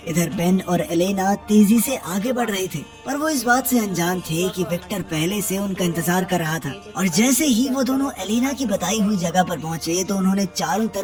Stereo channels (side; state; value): both; identical; correlation 1.00